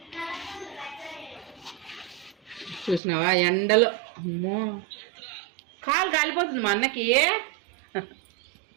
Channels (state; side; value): drops out; left; at 3.0 s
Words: చూసినావా ఎండలో అమ్మో కాలు కాలిపోతుంది మా అన్నకి.